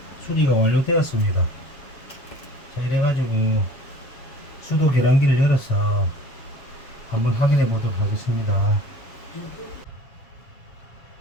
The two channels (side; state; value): right; late; 7.3 ms